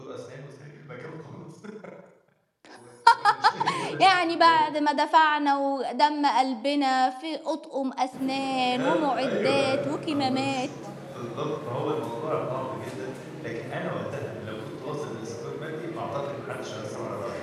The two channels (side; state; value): both; identical; correlation 1.00